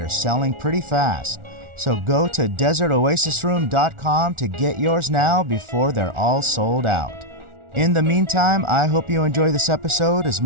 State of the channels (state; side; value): late; left; 1.4 ms